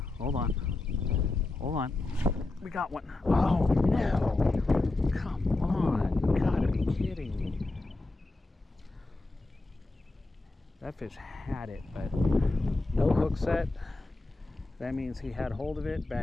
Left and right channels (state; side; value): quieter; right; 3.1 dB